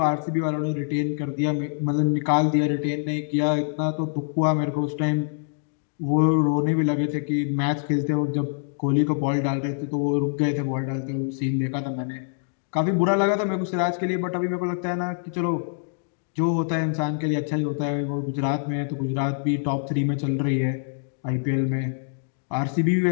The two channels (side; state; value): right; silent; digital silence